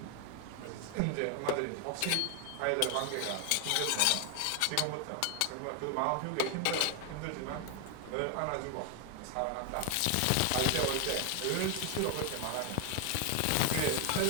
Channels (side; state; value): both; different; correlation 0.01